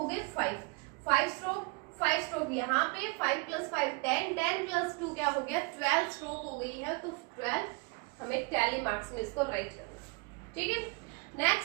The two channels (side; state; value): left; quieter; 30.5 dB